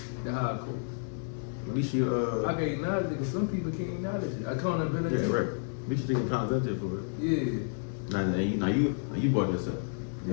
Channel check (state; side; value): silent; right; digital silence